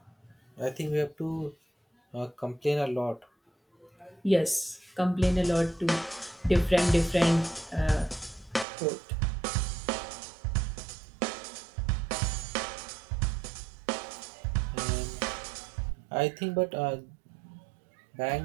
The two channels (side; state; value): left; drops out; at 8.7 s